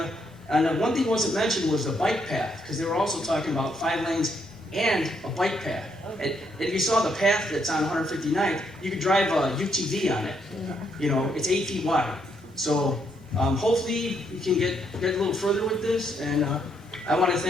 And one thing wasn't mentioned was the bike path, because they were also talking about 5 lanes and a bike path. And if you saw the path that's on 159th, you could drive a UTV on it. You know, it's 8 feet wide. So hopefully we can get a little further with this. And I want to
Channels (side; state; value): both; normal; correlation 0.74